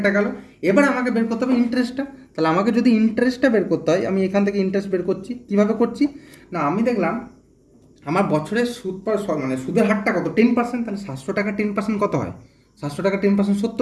গেল। এবার আমাকে বের করতে হবে ইন্টারেস্টটা। তাহলে আমাকে যদি ইন্টারেস্টটা বের করতে হয়, আমি এখান থেকে ইন্টারেস্ট বের করছি। কীভাবে করছি না, আমি দেখলাম আমার বছরের সুদ মানে সুদের হারটা কত, 10%। তাহলে 700 টাকা 10% কত হয়, 700 টাকা 10%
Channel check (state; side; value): identical; both; correlation 1.00